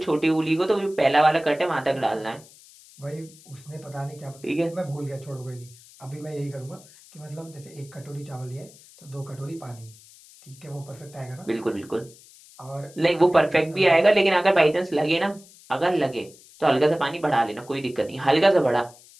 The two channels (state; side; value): noise; left; hiss, 23 dB below the sound